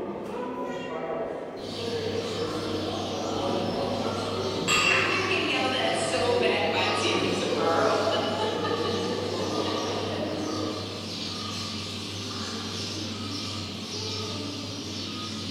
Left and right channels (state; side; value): identical; both; correlation 1.00